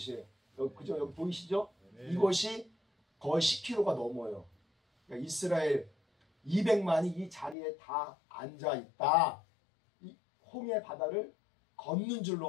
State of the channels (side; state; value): right; drops out; at 7.6 s